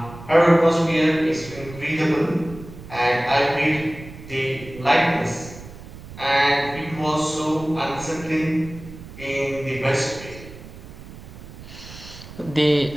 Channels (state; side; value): noise; right; rumble, 15 dB below the sound